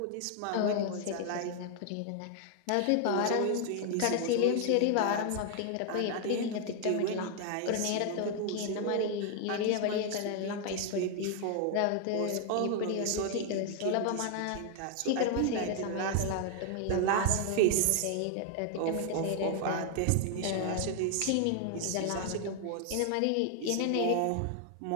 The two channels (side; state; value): both; different; correlation 0.00